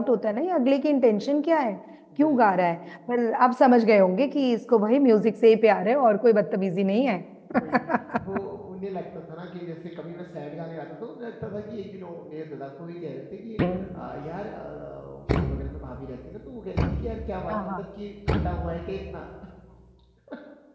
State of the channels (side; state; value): both; identical; correlation 1.00